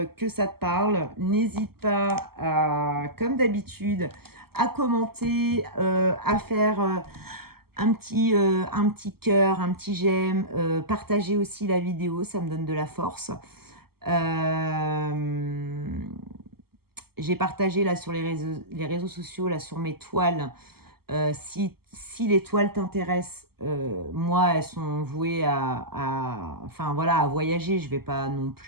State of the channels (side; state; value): left; late; 0.95 ms